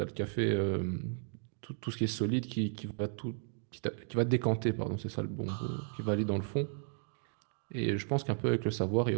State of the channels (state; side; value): silent; left; 55 dB below the other